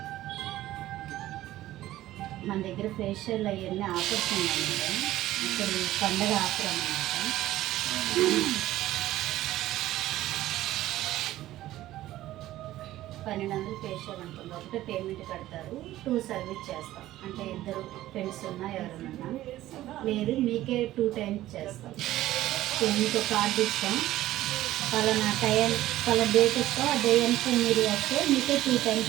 మన దగ్గర ఫేషియల్ అవన్నీ ఆఫర్స్ ఉన్నాయి మేడం. ఇప్పుడు పండగ ఆఫర్ అన్నమాట. 1200 ఫేషియల్ ఉంటుంది. ఒకటే పేమెంట్ కడతారు, 2 సర్వీస్ చేస్తాం. అంటే ఇద్దరు ఫ్రెండ్స్ ఉన్నా ఎవరైనా లేదు మీకే 2 టైమ్స్ చేస్తాం. మీకు కార్డు ఇస్తాం, పలానా టైం పలానా డేట్ ఇస్తాం, ఆ డేట్కి మీరు వస్తే మీకే 2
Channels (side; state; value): left; quieter; 15.0 dB